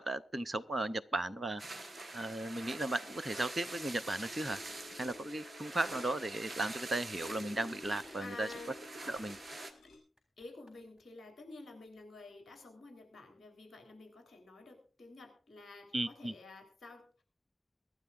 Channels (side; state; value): both; normal; correlation 0.88